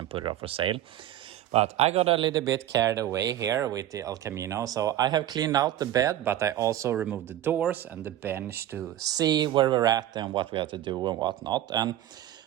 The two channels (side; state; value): left; quieter; 12.6 dB